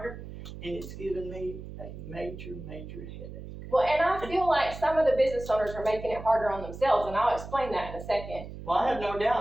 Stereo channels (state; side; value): noise; right; hum, 12 dB below the sound